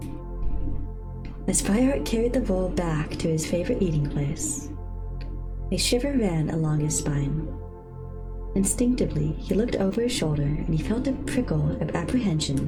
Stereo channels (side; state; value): both; identical; correlation 1.00